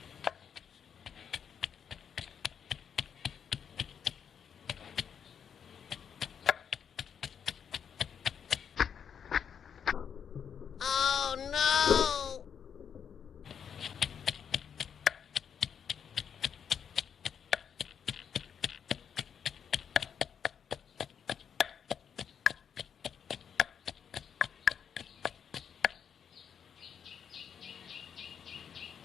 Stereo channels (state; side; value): quieter; right; 7.7 dB